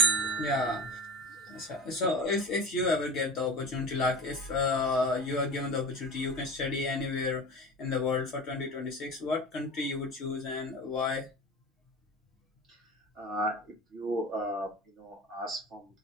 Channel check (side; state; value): both; normal; correlation 0.33